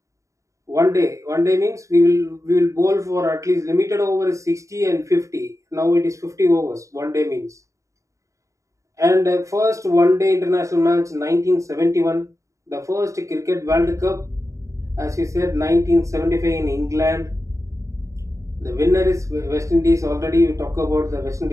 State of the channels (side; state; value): left; late; 0.15 ms